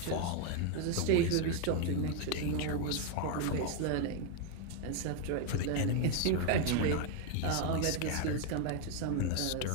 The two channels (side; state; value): both; different; correlation 0.01